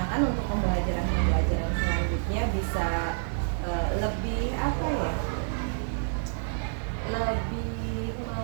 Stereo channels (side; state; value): left; silent; digital silence